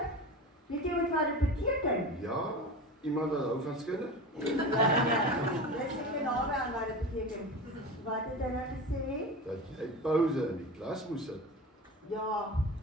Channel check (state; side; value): normal; both; correlation 0.30